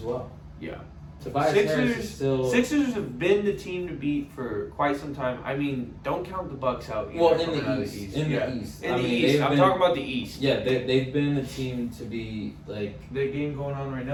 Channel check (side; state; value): both; identical; correlation 1.00